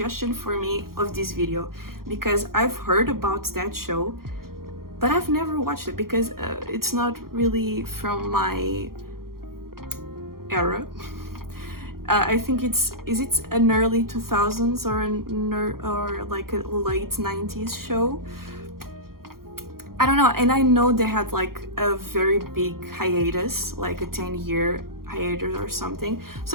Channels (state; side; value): late; left; 0.93 ms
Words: for me of this video because I've heard about that show, but I've never watched it because it's not really from my era. I think is it an early 2000s or like a late 90s show? I don't know, and I know they had like a very big hiatus, like a 10-year hiatus or something.